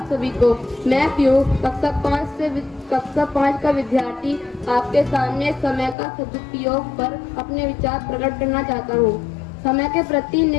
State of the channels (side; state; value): right; drops out; at 6.0 s